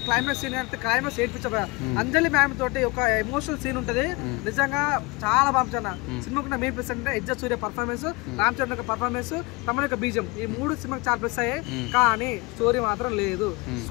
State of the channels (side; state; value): right; quieter; 25.6 dB